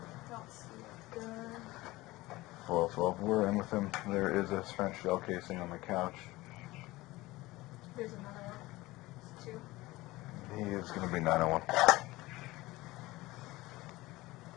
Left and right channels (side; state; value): right; quieter; 19.5 dB